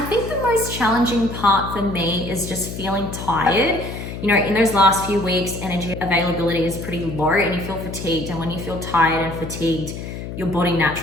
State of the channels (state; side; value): noise; left; hum, 8 dB below the sound